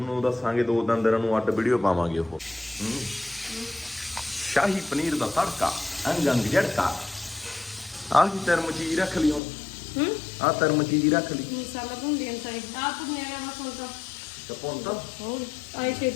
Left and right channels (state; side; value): drops out; right; at 9.4 s